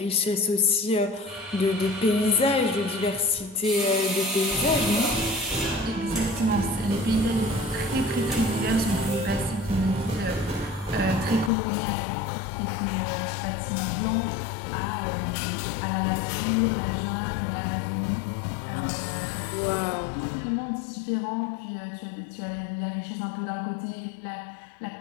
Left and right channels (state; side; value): drops out; right; at 11.5 s